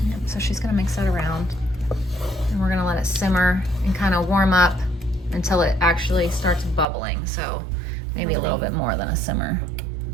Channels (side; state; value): left; drops out; at 6.9 s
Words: Yep, so she's gonna mix that around. And we're gonna let it simmer and kind of warm up until it actually starts bubbling. So maybe a little bit more than a simmer.